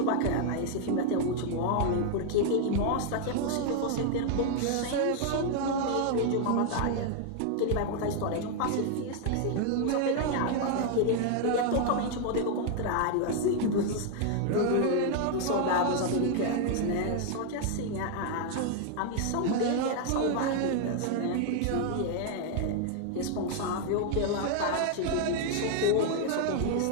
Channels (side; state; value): both; different; correlation 0.00